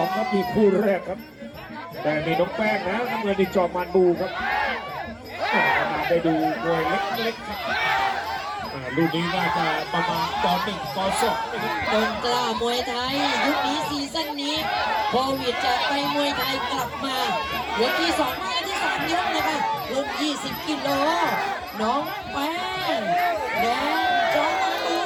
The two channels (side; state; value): both; identical; correlation 1.00